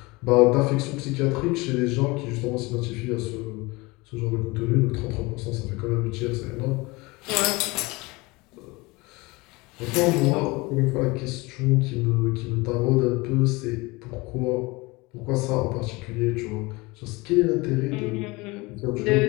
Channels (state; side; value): quieter; right; 23.8 dB